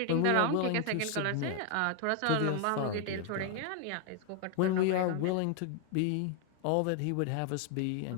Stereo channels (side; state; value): both; different; correlation 0.00